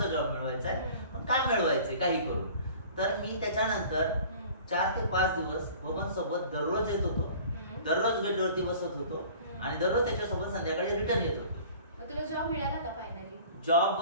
जॉब मिळवायचा आहे, पण काय मिळवायचंय काही करून. तर मी त्याच्यानंतर 4 ते 5 दिवस बबन सोबत दररोज येत होतो, दररोज गेटवरती बसत होतो आणि दररोज त्याच्यासोबत संध्याकाळी रिटर्न येत होतो. तुला जॉब मिळाला का फायनली? जॉब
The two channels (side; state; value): both; inverted; correlation -0.46